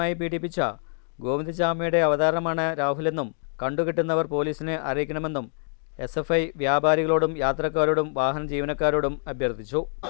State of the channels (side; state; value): right; silent; 58 dB below the other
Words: പീഡിപ്പിച്ച ഗോവിന്ദചാമിയുടെ അവതാരമാണ് രാഹുലെന്നും കണ്ടുകിട്ടുന്നവർ പോലീസിനെ അറിയിക്കണമെന്നും SFI വ്യാപാരികളോടും യാത്രക്കാരോടും വാഹന ജീവനക്കാരോടും അഭ്യർത്ഥിച്ചു.